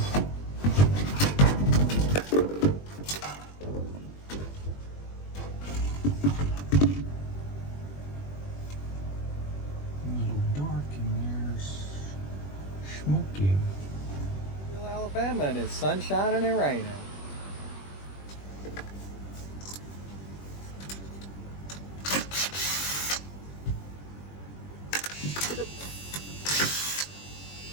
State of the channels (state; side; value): late; right; 21 ms